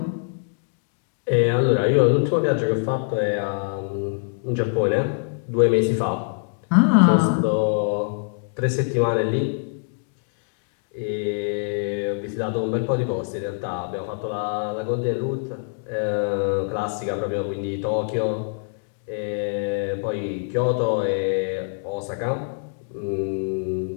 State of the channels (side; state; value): right; silent; digital silence